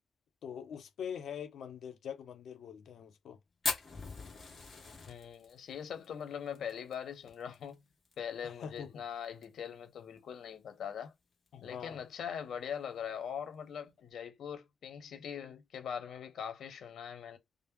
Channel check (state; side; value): quieter; right; 6.5 dB